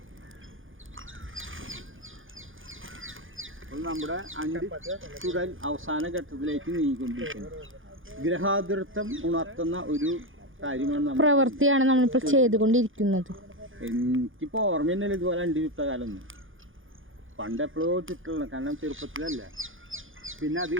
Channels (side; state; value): left; late; 0.58 ms